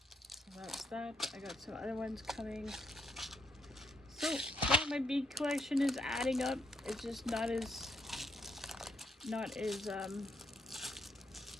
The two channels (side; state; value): both; normal; correlation 0.76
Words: So that's that. I got some other ones coming. So, yeah, my bead collection is adding up. It's just not as